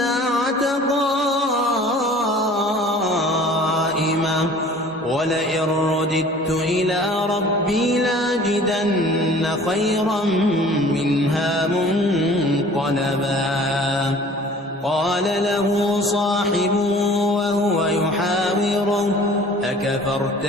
قائمة ولئن رددت إلى ربي لاجدن خيرا منها منقلبا قال له صاحبه وهو يحاوره أكفرت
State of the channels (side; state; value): both; normal; correlation 0.48